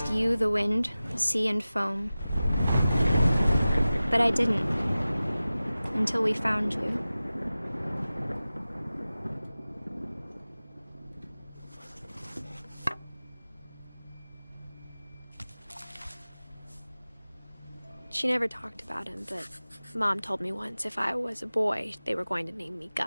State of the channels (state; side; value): inverted; both; correlation -0.96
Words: you, the wind, the sea, and foam. But I didn't, until we found you. She never talked about him, but Mom told me once if I was a boy, they were going to name me